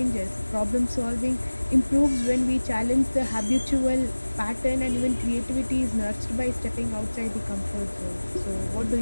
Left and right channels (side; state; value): both; inverted; correlation -1.00